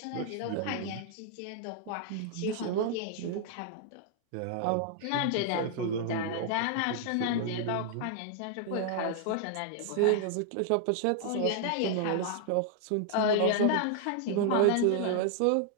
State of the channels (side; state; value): both; different; correlation -0.01